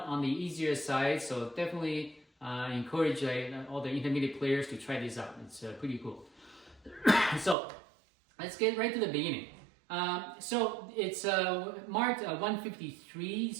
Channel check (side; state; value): left; drops out; at 7.6 s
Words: on the easier side. So definitely encourage all the intermediate players to try this out. It's pretty cool. So let's get right to the beginning. So it's marked 153.